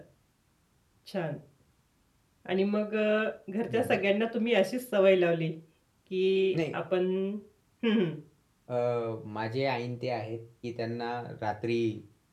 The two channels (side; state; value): both; identical; correlation 1.00